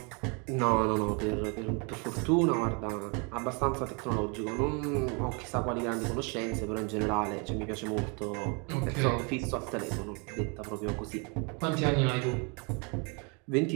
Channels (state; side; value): quieter; left; 33.6 dB